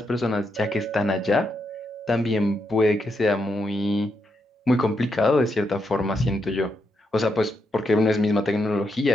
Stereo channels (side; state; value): both; normal; correlation 0.81